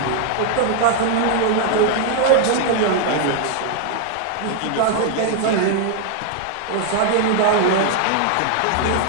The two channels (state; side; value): different; both; correlation 0.00